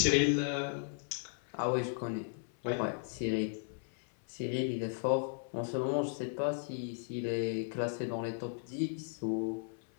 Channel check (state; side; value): silent; right; 54 dB below the other